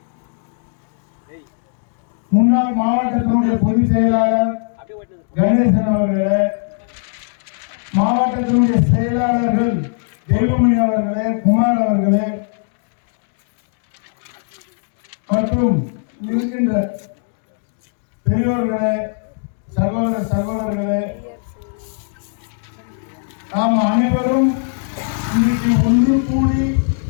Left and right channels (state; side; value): silent; right; digital silence